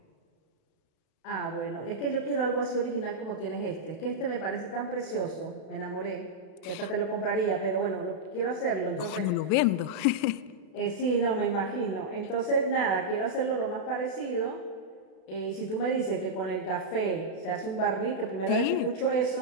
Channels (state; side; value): late; right; 32 ms